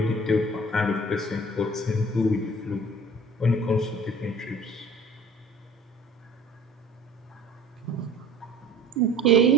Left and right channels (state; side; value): normal; both; correlation 0.46